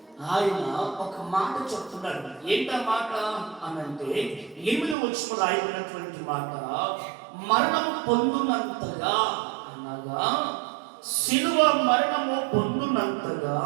ఆయన ఒక మాట చెప్తున్నాడు. ఏంటా మాట అనంటే 8వ వచనంలో రాయబడినటువంటి మాట, మరణము పొందునంతగా అనగా శిలువ మరణము పొందునంతగా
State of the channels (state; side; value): drops out; left; at 5.0 s